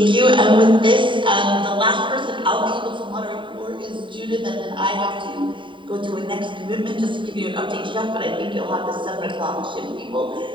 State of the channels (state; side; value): late; left; 0.24 ms